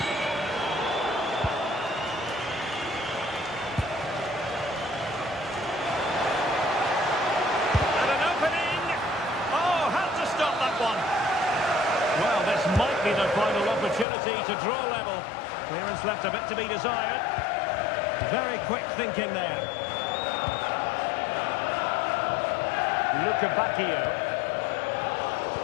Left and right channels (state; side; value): drops out; right; at 14.1 s